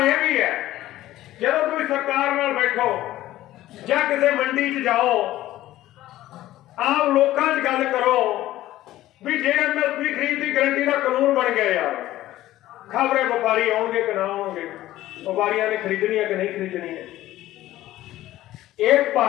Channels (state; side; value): quieter; right; 15.0 dB